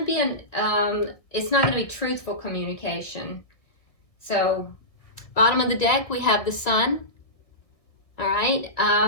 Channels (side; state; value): right; late; 1.6 ms